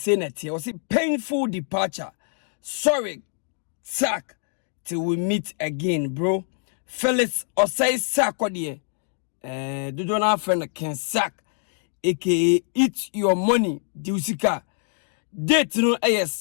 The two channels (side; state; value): right; silent; digital silence